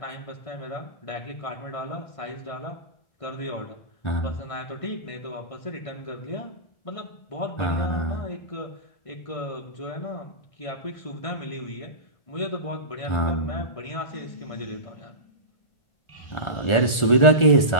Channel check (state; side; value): late; right; 1.4 ms